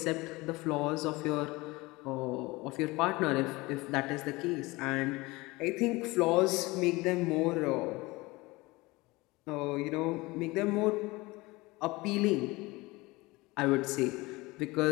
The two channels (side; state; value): right; quieter; 22.3 dB